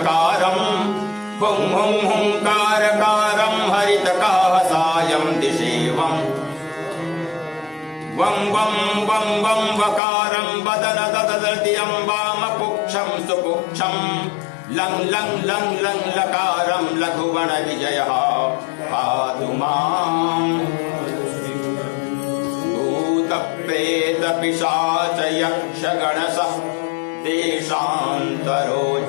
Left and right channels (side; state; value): right; drops out; at 10.0 s